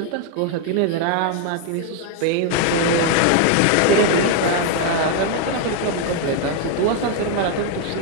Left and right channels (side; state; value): both; different; correlation 0.01